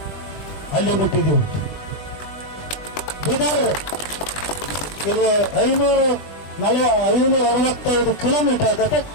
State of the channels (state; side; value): late; right; 20 ms